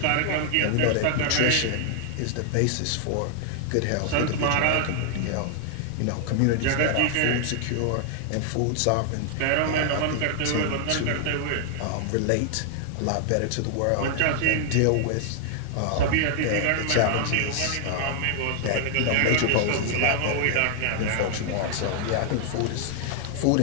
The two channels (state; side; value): different; both; correlation 0.00